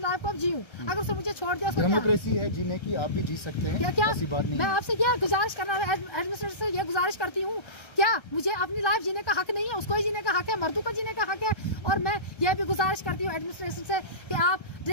को अब जीऊँ। अगर उसने मुझे छोड़ दिया, डेमोक्रेसी है जीने की, आप भी जी सकते हैं, क्या ऐसी बात नहीं। मैं आपसे क्या गुजारिश करना है, एडमिनिस्ट्रेटर से ये गुजारिश करती हूँ, क्या मुझे अपनी लाइफ जीने का हक नहीं है? उसको ही जीने का हक है, मर्दों को जीने का हक है। और मैं ये भी गुजारिश करती हूँ एडमिनिस्ट्रेशन से कि आप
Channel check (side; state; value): right; late; 1.3 ms